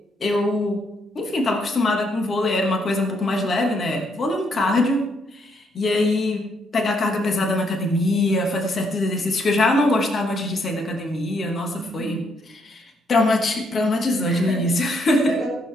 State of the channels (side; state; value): both; normal; correlation 0.73